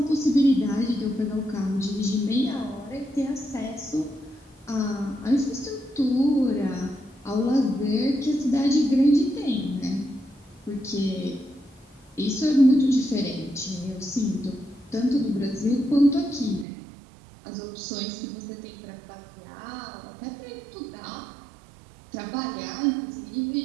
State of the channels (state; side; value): drops out; left; at 16.7 s